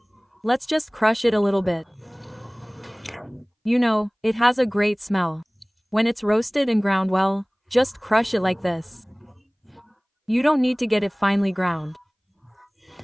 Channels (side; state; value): both; identical; correlation 1.00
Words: Let's just crush it a little bit. You know, it has a great smell. When it's roasted and ground well, just crush it like this. You don't need to get it finely ground.